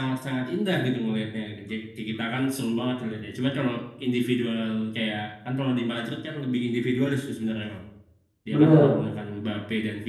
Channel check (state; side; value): identical; both; correlation 1.00